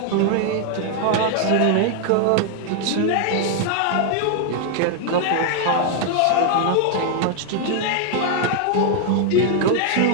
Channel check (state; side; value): different; both; correlation 0.00